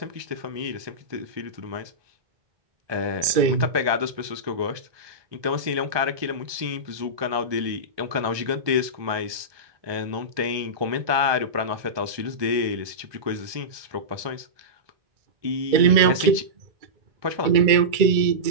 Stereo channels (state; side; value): late; left; 1.2 ms